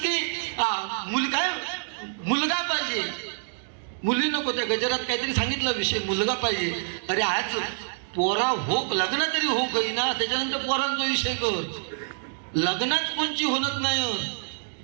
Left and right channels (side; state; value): left; silent; digital silence